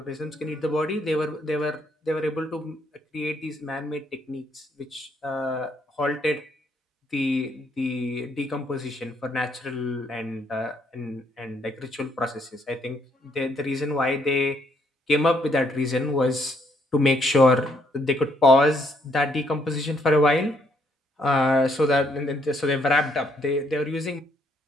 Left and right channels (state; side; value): normal; both; correlation 0.70